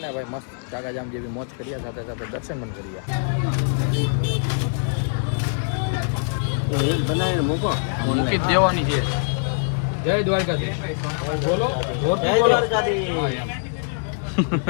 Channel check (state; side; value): silent; right; 63 dB below the other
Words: ભાઈ મસ્ત ચાકા જામ જેવી મોજ કરીએ, સાથે સાથે દર્શન પણ કરીએ. બનાવીને મૂકો, મૂકી દેવાની છે. જય દ્વારકાધીશ. બોલો